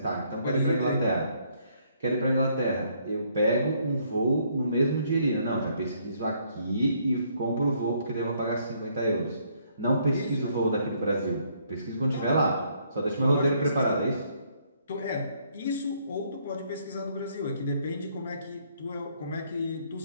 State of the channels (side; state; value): both; inverted; correlation -0.68